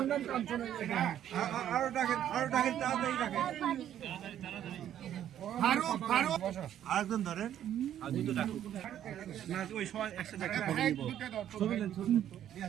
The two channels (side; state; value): left; quieter; 10.9 dB